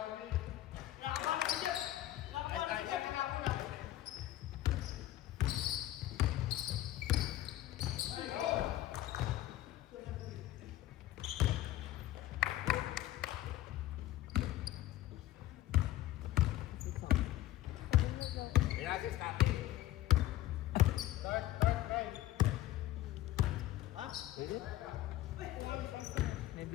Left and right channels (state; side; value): quieter; right; 14.6 dB